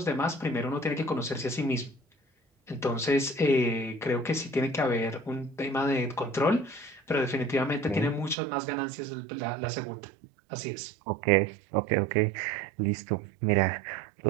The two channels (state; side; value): drops out; left; at 8.3 s